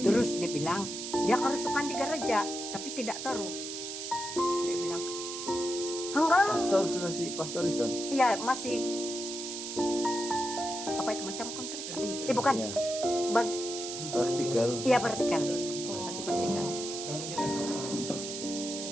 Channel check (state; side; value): noise; right; hiss, 7 dB below the sound